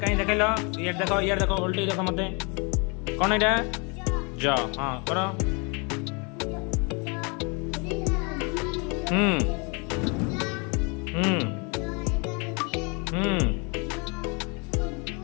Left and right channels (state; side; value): quieter; right; 32.0 dB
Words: कहीं देख लो ये देखो उल्टी देखो मत कौन एटा ज हाँ करो हम्म हम्म हम्म